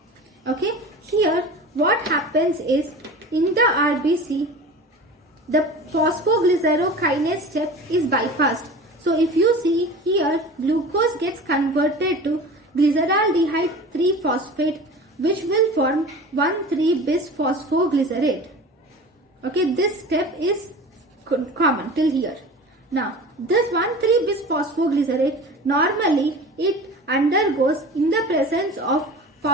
Okay, here what happens is in the RBC, the phosphoglycerokinase step is bypassed. So if you see here, glucose gets converted to glyceraldehyde 3-phosphate, which will form 1,3-bis-phosphoglycerate. Okay, this step is common till here. Now, this 1,3-bis-phosphoglycerate, normally it undergoes in the presence of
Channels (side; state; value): both; normal; correlation 0.36